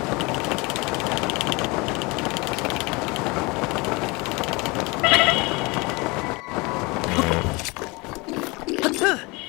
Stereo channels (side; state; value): right; quieter; 25.9 dB